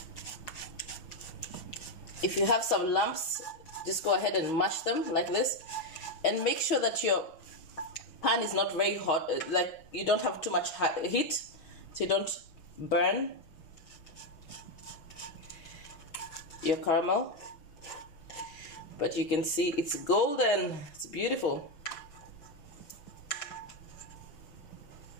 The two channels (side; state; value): right; late; 6.3 ms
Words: If you have some lumps, just go ahead and mash them like this, and make sure that your pan is not very hot, like you don't have too much heat, so you don't burn your caramel. But you can see it's golden. It's beautiful.